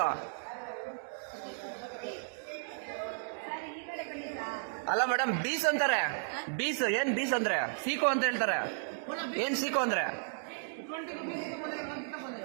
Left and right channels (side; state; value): left; silent; digital silence